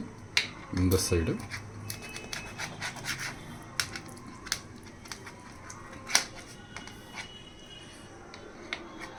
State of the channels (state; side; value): identical; both; correlation 1.00